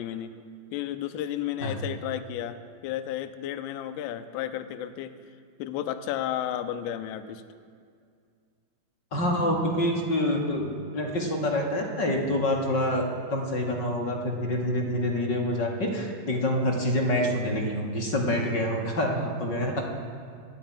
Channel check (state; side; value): late; right; 5.4 ms